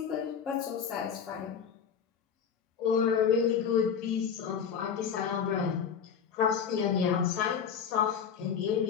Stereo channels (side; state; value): right; quieter; 7.2 dB